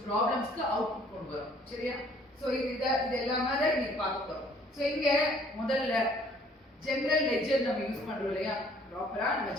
ப்ராப்ளம்ஸ்க்கு அவுட்புட் கொண்டு வரோம். சரியா? சோ இது எல்லாமே தான் இன்னைக்கு பார்க்க போறோம். சோ இங்க முதல்ல ஜெனரல் லெட்ஜர் நம்ம யூஸ் பண்றோம் இல்லையா, ப்ராப்பரா நம்ம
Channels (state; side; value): normal; both; correlation 0.59